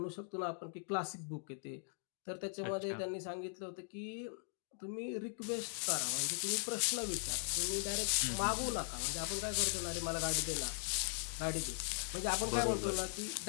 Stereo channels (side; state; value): right; silent; digital silence